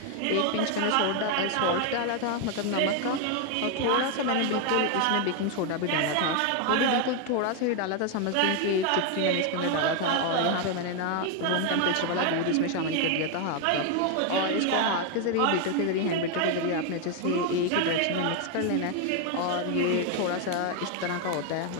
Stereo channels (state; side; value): different; both; correlation 0.01